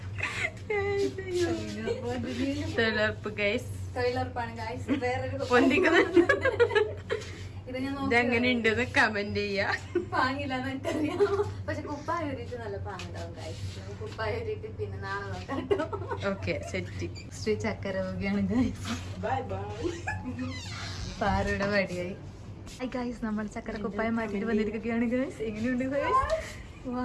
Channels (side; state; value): both; identical; correlation 1.00